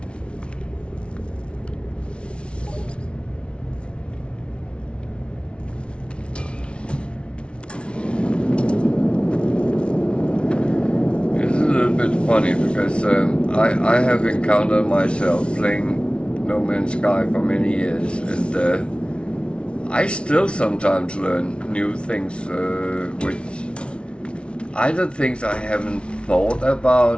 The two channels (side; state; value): right; late; 0.058 ms